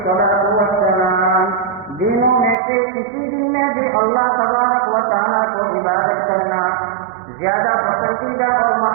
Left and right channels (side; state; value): left; drops out; at 2.6 s